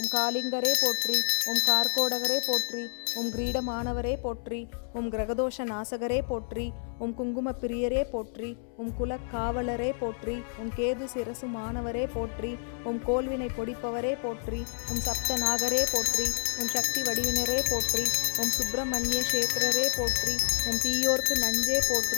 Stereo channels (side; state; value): right; silent; 59 dB below the other